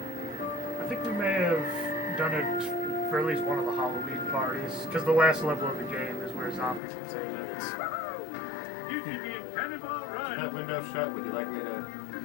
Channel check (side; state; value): right; drops out; at 6.8 s